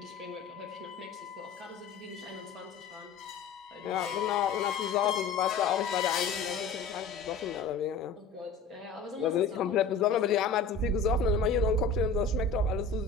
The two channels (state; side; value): quieter; right; 4.9 dB